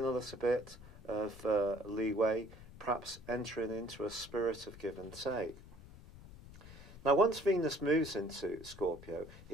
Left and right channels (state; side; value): noise; left; rumble, 17 dB below the sound